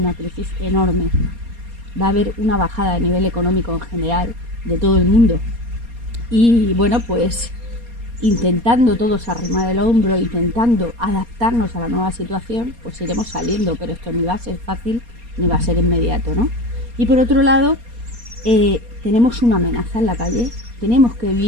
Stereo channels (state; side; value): late; left; 4.2 ms